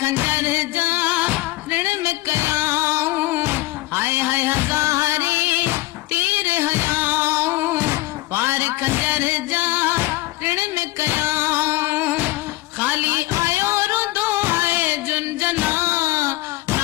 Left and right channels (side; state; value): right; quieter; 19.0 dB